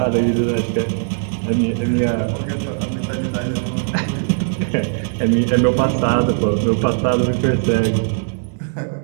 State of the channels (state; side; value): silent; left; digital silence